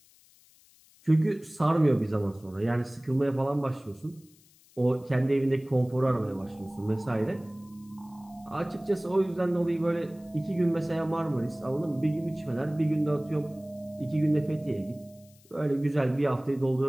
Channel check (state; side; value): noise; left; hiss, 28 dB below the sound